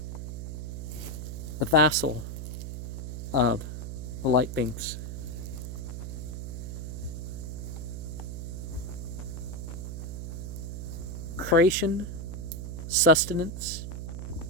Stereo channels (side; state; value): right; noise; hum, 6 dB below the sound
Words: the vassal of the light beings. Creation, sustenance,